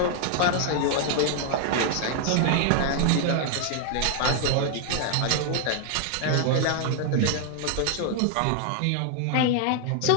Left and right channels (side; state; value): both; different; correlation 0.00